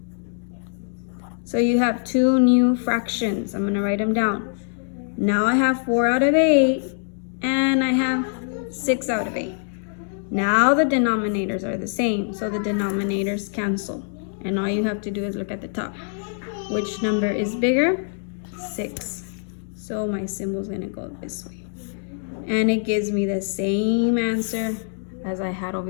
So you have 2 new fractions. I'm going to write them down. Now I have 4 out of 8, and I have 6 out of 8. Now the denominators are the same, so the denominators cancel. And all you have to do is look at the top. Which number is bigger? 6. So my symbol is going to go this way. And it gives me the same answer as I had over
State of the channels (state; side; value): silent; right; digital silence